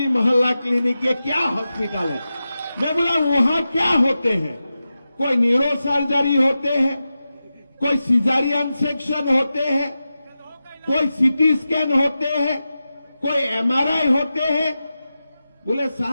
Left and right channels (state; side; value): inverted; both; correlation -0.92